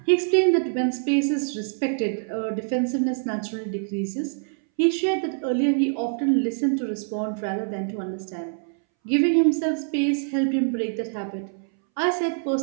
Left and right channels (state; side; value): silent; left; 62 dB below the other